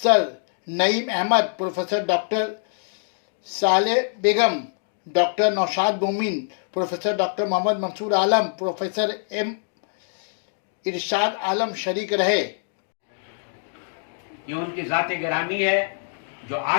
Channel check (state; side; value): silent; right; digital silence